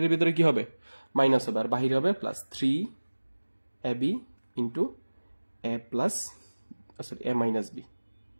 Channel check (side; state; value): both; inverted; correlation -1.00